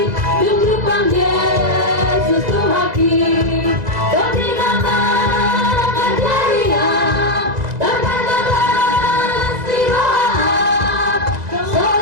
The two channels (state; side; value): late; left; 2.0 ms